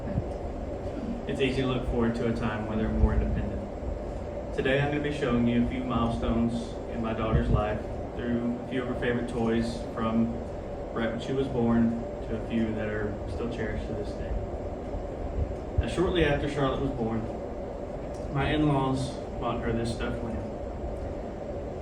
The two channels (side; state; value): both; identical; correlation 1.00